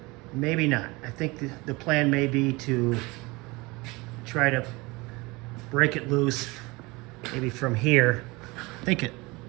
maybe not. I think the plan may be to try to break it loose, maybe from here.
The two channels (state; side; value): quieter; left; 24.0 dB